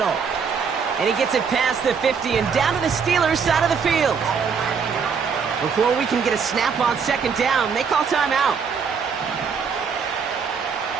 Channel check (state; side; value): quieter; left; 6.1 dB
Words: And he gets it past the 50 and down to the Steelers' side of the field. Before we can get a snap on 2nd down, they call timeout.